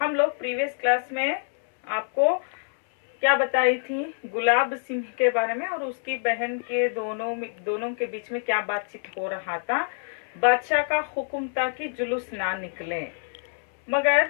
हम लोग प्रीवियस क्लास में आपको क्या बताई थी, गुलाब सिंह के बारे में और उसकी बहन के दोनों के बीच में क्या बातचीत हो रहा था। बादशाह का हुक्म था कि जुलूस ना निकले, मगर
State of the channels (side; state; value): right; silent; 61 dB below the other